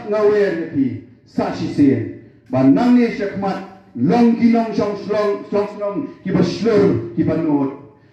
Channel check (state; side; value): identical; both; correlation 1.00